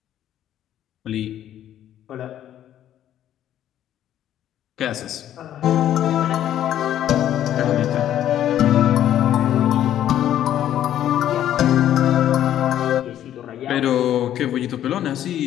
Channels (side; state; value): right; quieter; 11.4 dB